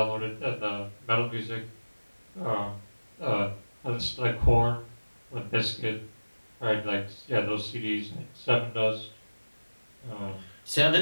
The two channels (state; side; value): inverted; both; correlation -1.00